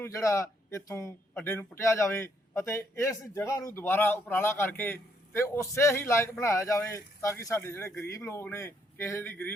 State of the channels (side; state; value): both; normal; correlation 0.72